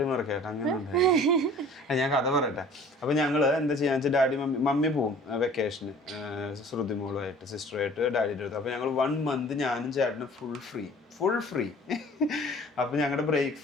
മറക്കേട്ടെ. അങ്ങനെ ഉണ്ടായി. ഞാൻ കഥ പറയട്ടെ. അപ്പൊ ഞങ്ങള് എന്താ ചെയ്യാന്ന് വെച്ചാൽ ഡാഡി മമ്മി പോവും വെക്കേഷന് ശ്രുതിമോളുമായിട്ട് സിസ്റ്ററുമായിട്ട് ഡാഡിയുടെ അടുത്ത്. അപ്പൊ ഞങ്ങൾ 1 month ഞാനും ചേട്ടനും ഫുൾ ഫ്രീ. അപ്പൊ ഞങ്ങളുടെ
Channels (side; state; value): both; normal; correlation 0.48